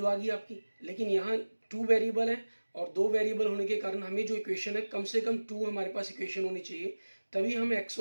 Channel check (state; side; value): inverted; both; correlation -1.00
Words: आ गई आपकी। लेकिन यहाँ टू वेरिएबल है और दो वेरिएबल होने के कारण हमें जो इक्वेशन है, कम से कम टू हमारे पास इक्वेशन होनी चाहिए, तभी हम एक्स